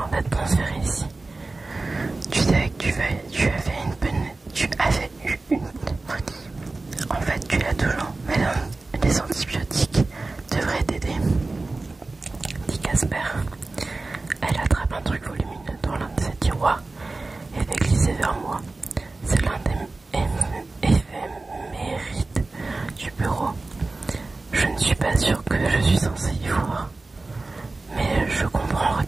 d'être transféré ici. Tu savais que tu avais eu une pneumonie. En fait, tu l'as toujours, mais les antibiotiques devraient t'aider. Dit Casper. Elle attrape un truc volumineux dans l'un de ses tiroirs et fait glisser vers moi. C'est l'un des éphémérides du bureau. Je ne suis pas sûre que je suis censée y voir. Mais je comprends en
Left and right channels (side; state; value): left; quieter; 3.4 dB